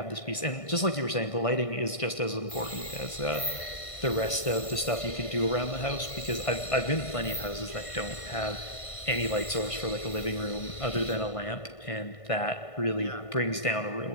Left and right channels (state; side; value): late; right; 1.5 ms